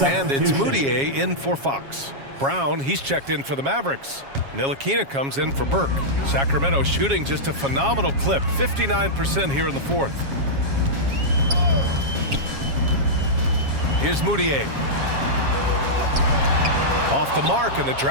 And it's Moutier in for Fox. Brown, he's checked in for the Mavericks. Ntilikina comes in for Burke. Sacramento shooting just a phenomenal clip. 59% here in the fourth. Here's Moutier. Off the mark, and the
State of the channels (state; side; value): late; left; 7.3 ms